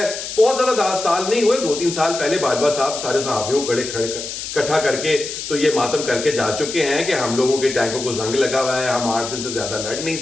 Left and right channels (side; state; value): left; noise; hiss, 7 dB below the sound